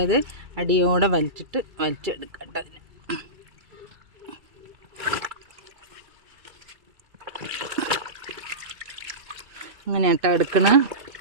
അടിയോടെ വലിച്ചെടുക്കട്ടെ. അതിന് ഇങ്ങനെ എടുക്കണം.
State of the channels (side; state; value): left; late; 2.3 ms